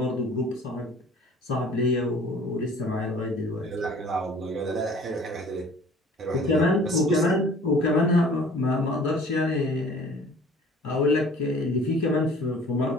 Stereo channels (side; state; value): both; normal; correlation 0.49